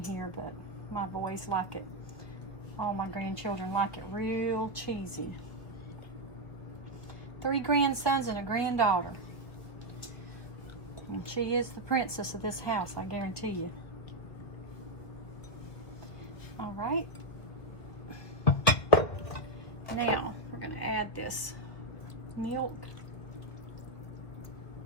here, but my boys like it. All my grandchildren like it real cheesy. 3 grandsons and a granddaughter. And she is the princess of this house, I guarantee you. All right. Now, we're going to add this milk.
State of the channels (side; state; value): right; late; 1.7 ms